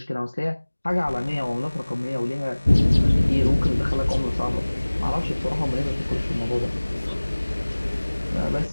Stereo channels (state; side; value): inverted; both; correlation -1.00